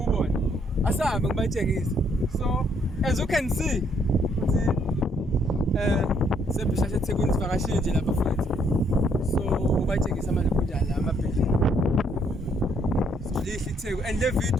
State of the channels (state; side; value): normal; both; correlation 0.69